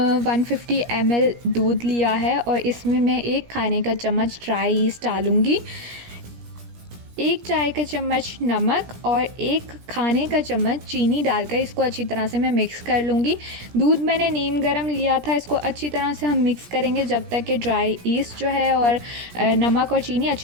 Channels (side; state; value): left; late; 17 ms